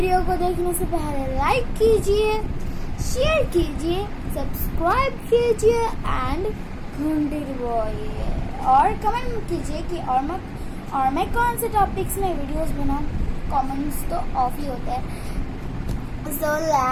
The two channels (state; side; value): identical; both; correlation 1.00